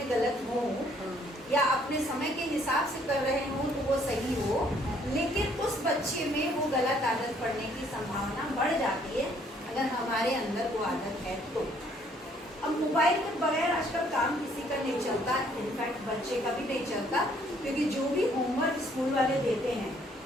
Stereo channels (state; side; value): normal; both; correlation 0.64